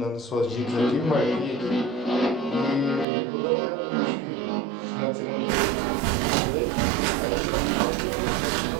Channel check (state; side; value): drops out; left; at 3.1 s